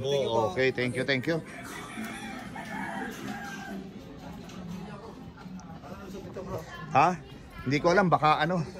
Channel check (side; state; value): both; identical; correlation 1.00